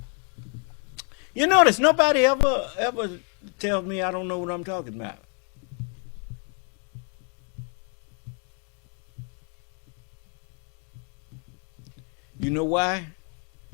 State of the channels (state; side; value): quieter; right; 39.9 dB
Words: you notice nobody ever tells me I don't know what I'm talking about. You know why?